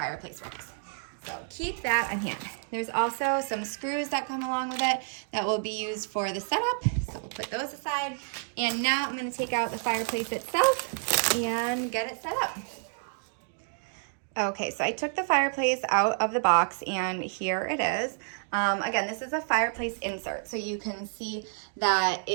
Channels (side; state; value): left; silent; 58 dB below the other